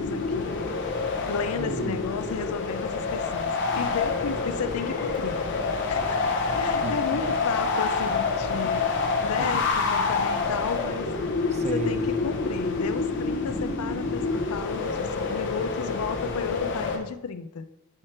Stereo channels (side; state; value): right; quieter; 3.9 dB